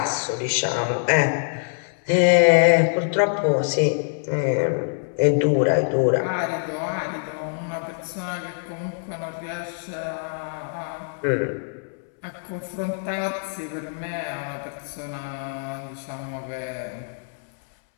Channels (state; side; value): silent; right; 62 dB below the other